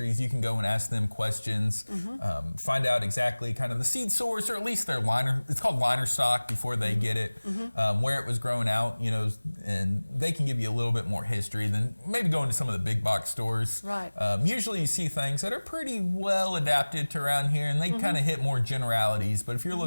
you can go and ask them questions, find out exactly kind of the seed source, or at least their liner, it's called liner stock before they get it, where it was grown out, and they can give you a little bit more history than maybe going to some of the big box stores. Right. Usually you see things that are pretty well adapted to around here, and they kind of hit more generalities, but if you're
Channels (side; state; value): both; inverted; correlation -1.00